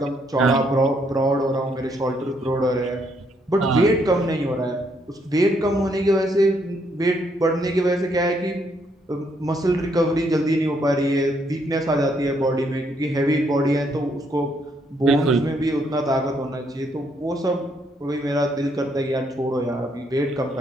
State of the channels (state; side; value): normal; both; correlation 0.72